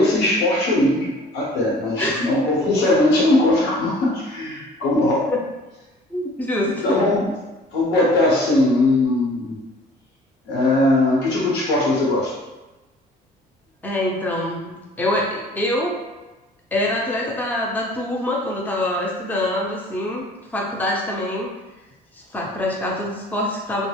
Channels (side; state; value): both; normal; correlation 0.50